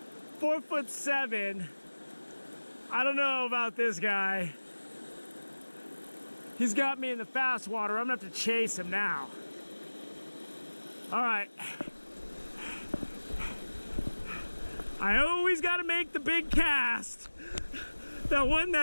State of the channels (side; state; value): both; inverted; correlation -1.00